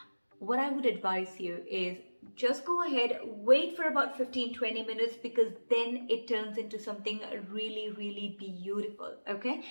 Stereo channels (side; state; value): both; inverted; correlation -1.00